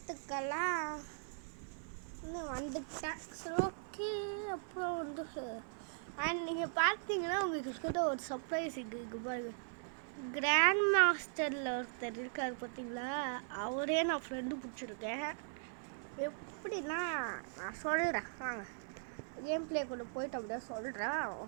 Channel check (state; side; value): silent; left; 52 dB below the other